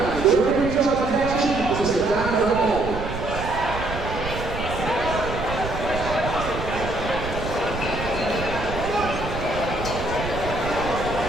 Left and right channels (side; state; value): right; noise; rumble, 7 dB below the sound